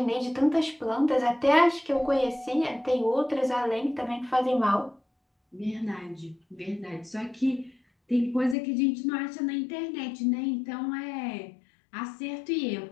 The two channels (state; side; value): drops out; right; at 8.6 s